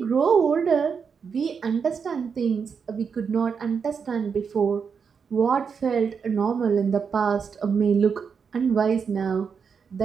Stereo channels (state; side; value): quieter; left; 6.2 dB